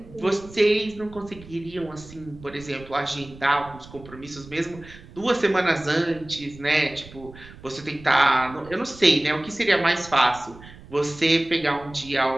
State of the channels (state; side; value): noise; right; rumble, 19 dB below the sound